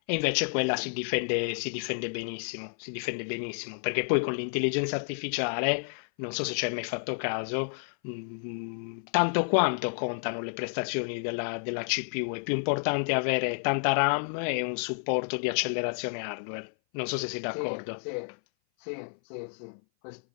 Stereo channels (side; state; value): right; silent; 57 dB below the other